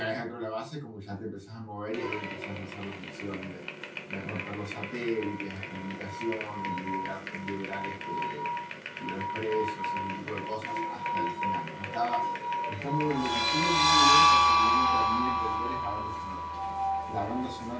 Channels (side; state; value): both; identical; correlation 1.00